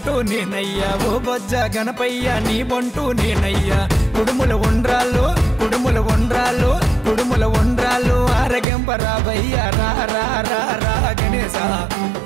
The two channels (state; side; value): drops out; left; at 8.7 s